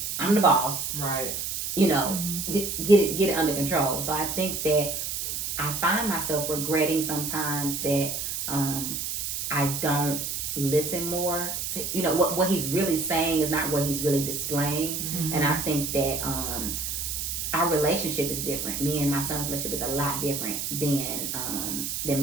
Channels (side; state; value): right; noise; hiss, 3 dB below the sound